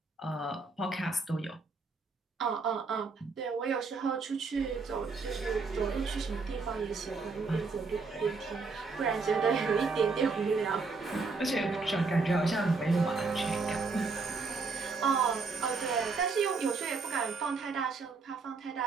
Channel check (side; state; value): left; quieter; 4.3 dB